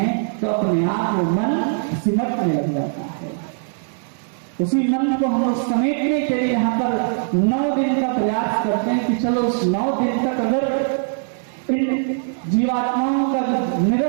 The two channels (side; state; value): left; silent; digital silence